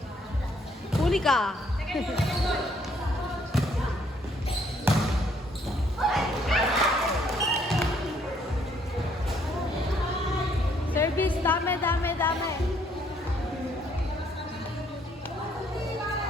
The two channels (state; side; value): normal; both; correlation 0.67